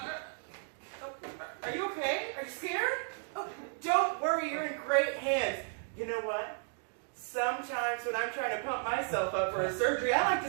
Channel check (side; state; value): left; silent; 55 dB below the other